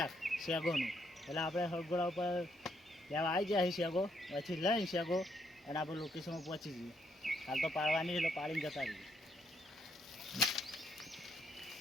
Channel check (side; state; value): both; normal; correlation 0.74